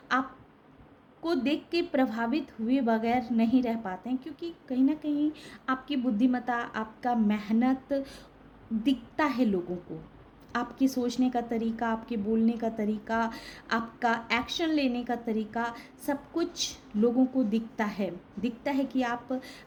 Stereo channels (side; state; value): both; identical; correlation 1.00